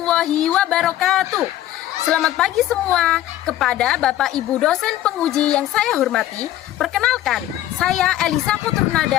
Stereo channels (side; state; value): right; quieter; 13.5 dB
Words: wabarakatuh. Selamat pagi semua. Kepada Bapak Ibu dosen penguji yang saya hormati, perkenalkan, saya Elisa